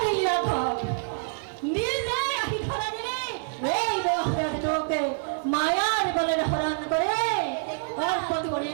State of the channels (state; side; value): silent; left; 57 dB below the other